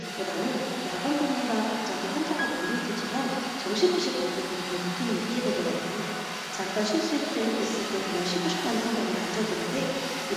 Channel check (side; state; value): both; identical; correlation 1.00